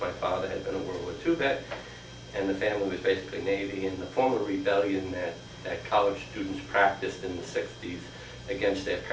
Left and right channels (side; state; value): both; identical; correlation 1.00